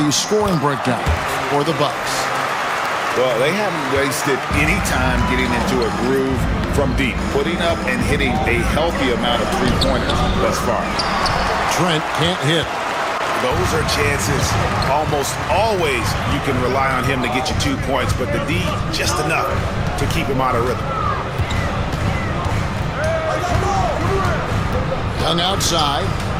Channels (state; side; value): identical; both; correlation 1.00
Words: scoring breakdown for the Bucks. Well, they haven't wasted any time getting into a groove from deep, putting up and hitting a healthy amount of three-pointers thus far. Trent can't hit. Those are chances. Almost always you can rely on him to get you 2 points, but the D just enough to keep him out of rhythm. Young outside.